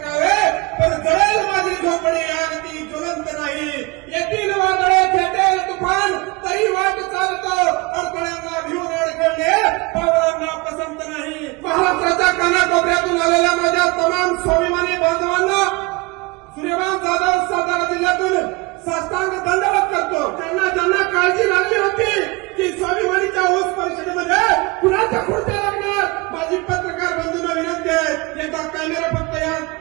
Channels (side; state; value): left; quieter; 25.4 dB